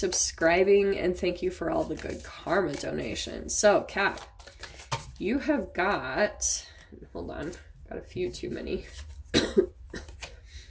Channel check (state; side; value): identical; both; correlation 1.00